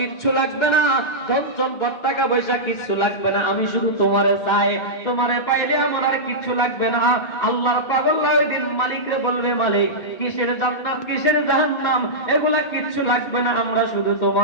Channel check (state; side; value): late; right; 2.1 ms